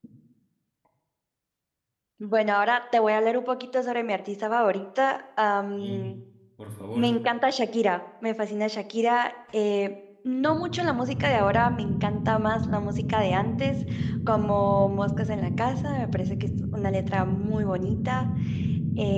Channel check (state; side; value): identical; both; correlation 1.00